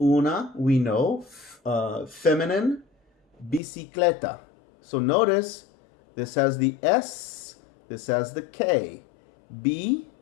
Una, we know. Feminine. Bicicleta. So notice, this has the S, this has the K. Bicicleta.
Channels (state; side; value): drops out; right; at 3.6 s